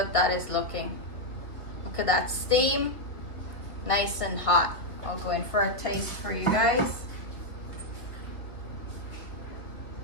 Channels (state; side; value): late; right; 1.7 ms